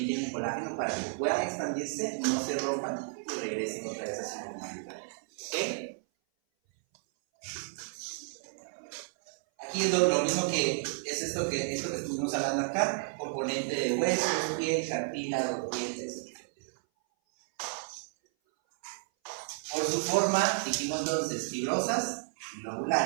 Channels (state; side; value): silent; left; 56 dB below the other